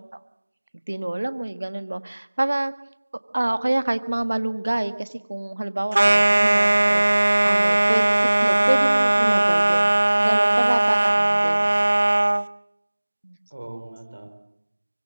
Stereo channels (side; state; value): both; inverted; correlation -1.00